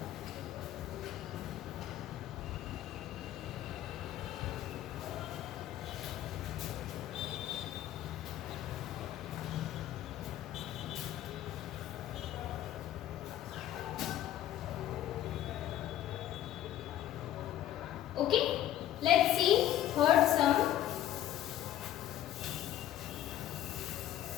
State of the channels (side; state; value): right; quieter; 12.6 dB